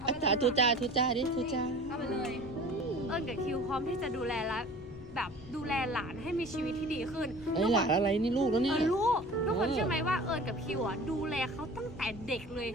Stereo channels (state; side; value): noise; left; rumble, 17 dB below the sound